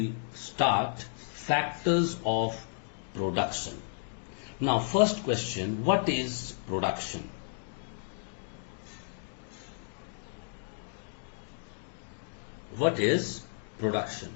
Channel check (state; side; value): silent; right; digital silence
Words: start factors of production. Now first question, what is production? What is production?